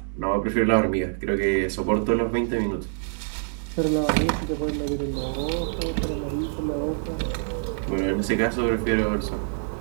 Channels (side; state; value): left; silent; 61 dB below the other